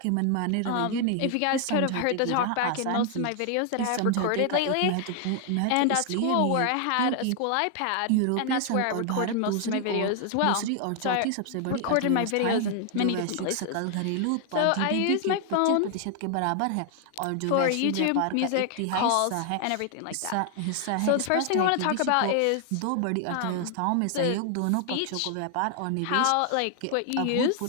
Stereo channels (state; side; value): different; both; correlation 0.00